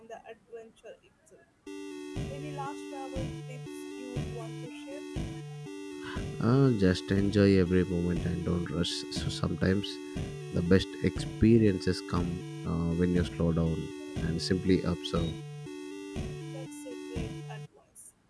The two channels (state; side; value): identical; both; correlation 1.00